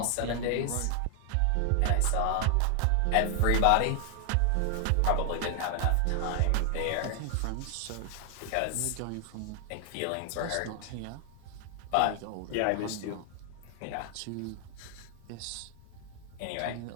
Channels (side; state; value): both; different; correlation 0.00